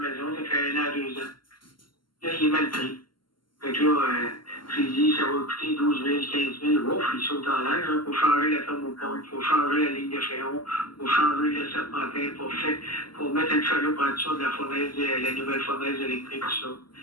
ça fait 1 an, 2 ans. Là, il est mal pris. Fait que là, j'ai dit, ça va coûter 12 000, 15 000. Ouf, il saute en l'air. Il faut changer la thermopompe, il faut changer la ligne de fréon, il faut changer le serpentin pour mettre une chaloupe en dessous de la fournaise, la nouvelle fournaise électrique, tout ça.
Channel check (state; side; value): late; right; 0.72 ms